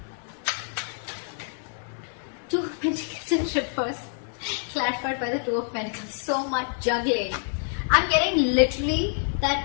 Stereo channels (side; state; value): right; silent; digital silence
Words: Two of Pentacles in reverse, clarified by the Two of Pentacles. So much juggling. I'm getting literally